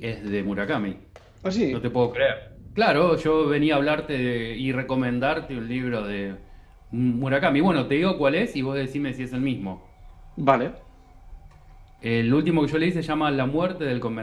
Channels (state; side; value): identical; both; correlation 1.00